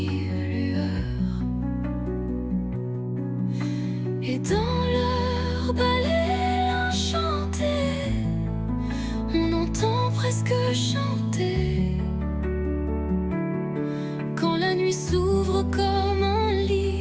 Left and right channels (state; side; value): identical; both; correlation 1.00